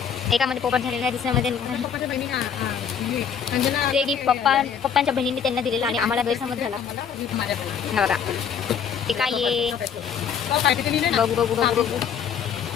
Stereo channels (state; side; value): quieter; right; 7.6 dB